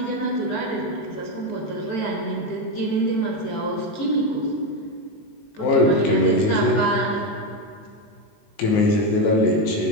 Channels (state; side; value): late; right; 19 ms